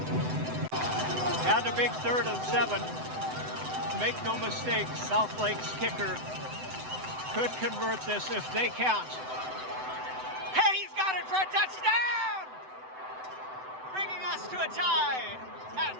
And a big 3rd and 7. Make no mistake, Southlake's kicker could convert this if they can't. Hey, he's got it for a touchdown! Bringing us to a tie at,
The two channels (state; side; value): late; left; 7.9 ms